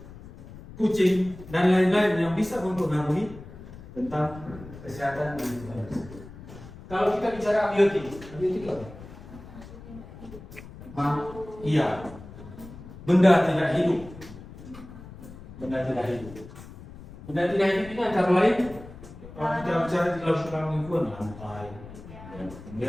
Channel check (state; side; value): noise; left; rumble, 16 dB below the sound